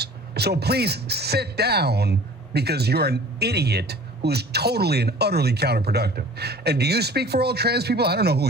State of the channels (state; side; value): normal; both; correlation 0.46